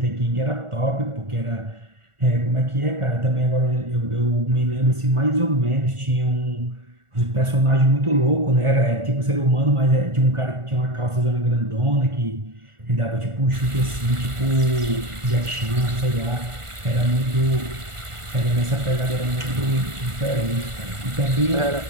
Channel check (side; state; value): left; late; 1.4 ms